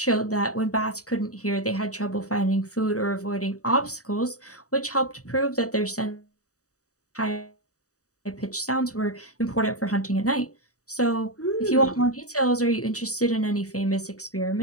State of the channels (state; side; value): late; right; 0.66 ms